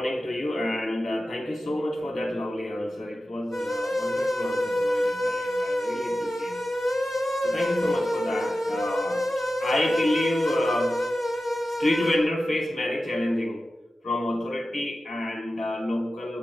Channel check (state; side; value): normal; both; correlation 0.94